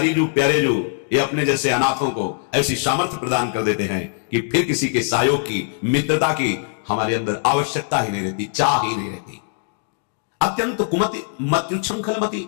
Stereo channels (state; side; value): silent; right; digital silence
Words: जू प्यारे जू, ये अपने जैसे अनाथों को ऐसी सामर्थ्य प्रदान कर देते हैं कि फिर किसी के सहयोग की, मित्रता की हमारे अंदर आवश्यकता ही नहीं रहती, चाह ही नहीं रहती। अत्यंत कुमति मत्युच्छृंखलमति,